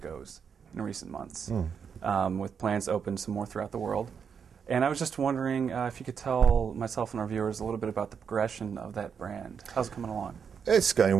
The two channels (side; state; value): left; quieter; 6.8 dB